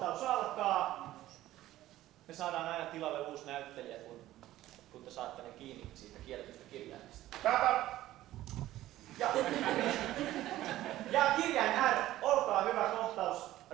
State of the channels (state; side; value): quieter; left; 14.9 dB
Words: alkaa. Me saadaan aina tilalle uusi näyttelijä, kun te saatte ne kiinni siitä kielletystä kirjaimista. Ja kirjain R, olkaa hyvä, kohtaus